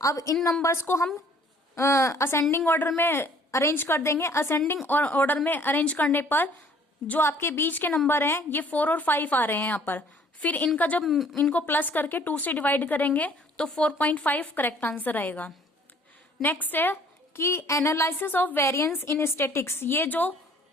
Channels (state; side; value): normal; both; correlation 0.56